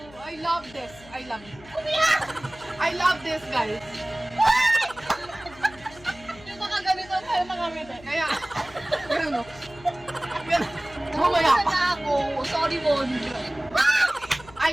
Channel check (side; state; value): left; noise; hum, 21 dB below the sound